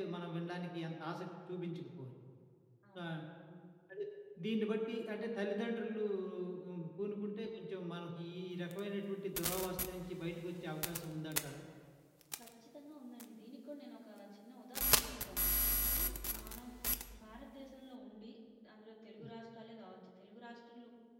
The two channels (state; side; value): identical; both; correlation 1.00